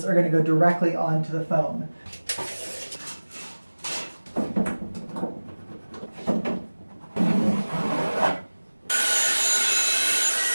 are going to go directly onto the foam.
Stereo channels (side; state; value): both; inverted; correlation -1.00